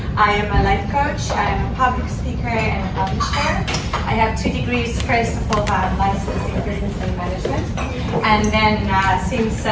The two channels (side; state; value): both; identical; correlation 1.00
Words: I am a life coach, I am a public speaker and a publisher. I have 2 degrees. First of all, I'm licensed in business and management. And then since